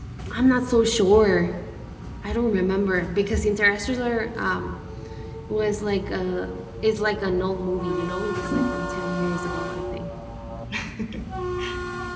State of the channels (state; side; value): identical; both; correlation 1.00